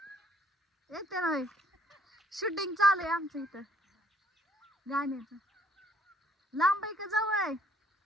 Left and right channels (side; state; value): both; normal; correlation 0.65